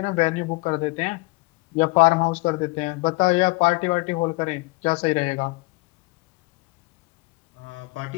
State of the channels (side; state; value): right; quieter; 25.6 dB